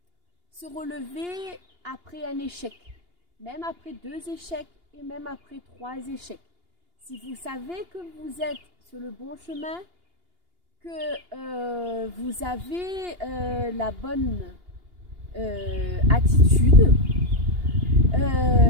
Se relever après un échec, même après 2 échecs et même après 3 échecs. Si vous savez que vous êtes sur le bon chemin, que vous avez la bonne attitude,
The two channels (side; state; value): left; late; 2.8 ms